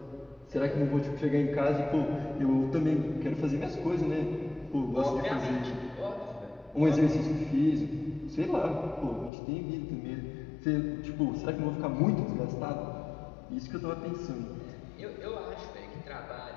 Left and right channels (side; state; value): right; drops out; at 9.3 s